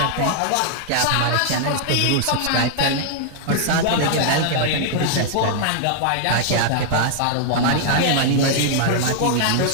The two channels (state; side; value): different; both; correlation -0.01